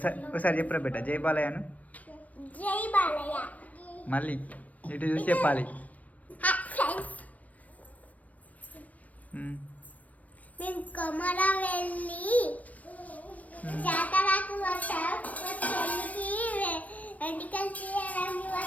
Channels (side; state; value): right; late; 0.070 ms